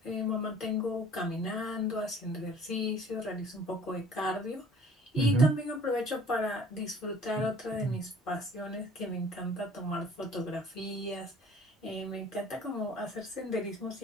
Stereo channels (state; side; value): normal; both; correlation 0.52